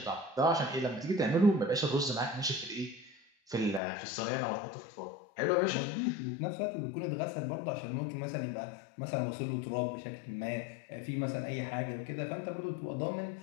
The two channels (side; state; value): right; drops out; at 3.8 s